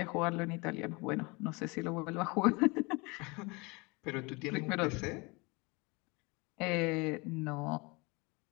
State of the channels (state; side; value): quieter; right; 27.1 dB